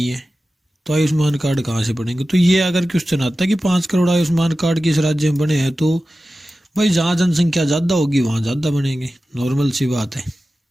है, तो आयुष्मान कार्ड कहाँ से बनेंगे। तो ये अगर क्वेश्चन आता है कि 5 करोड़ आयुष्मान कार्ड किस राज्य में बने हैं, तो भाई जहाँ जनसंख्या ज़्यादा होगी वहाँ ज़्यादा बनेंगे, नॉर्मल सी बात है।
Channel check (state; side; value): normal; both; correlation 0.94